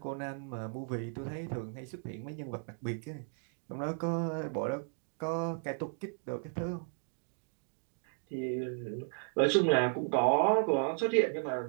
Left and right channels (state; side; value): silent; left; 55 dB below the other